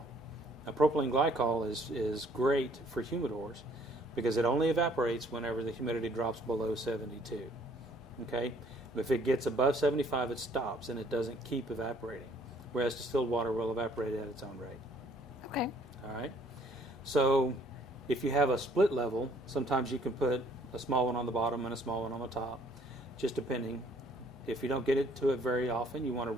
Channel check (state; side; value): normal; both; correlation 0.61